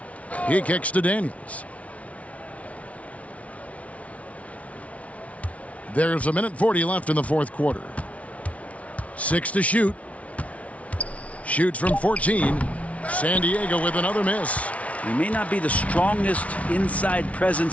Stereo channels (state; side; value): late; right; 0.065 ms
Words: He kicks to Daniels. There's 1:40 left in the fourth quarter. 6 to shoot. Shoots from 14. San Diego with another miss. He may not be the strongest inside